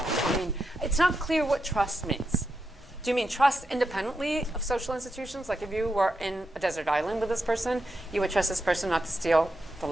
I mean, it's not clear what trust means. Do you mean trust independently of social institutions? Like if you were in a desert island with this person, you would trust this person not to steal the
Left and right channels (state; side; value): normal; both; correlation 0.86